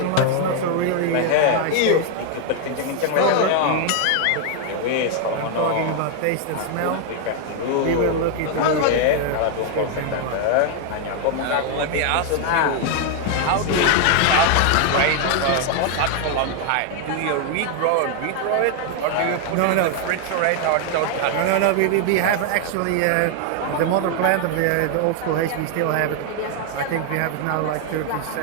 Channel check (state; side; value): different; both; correlation 0.00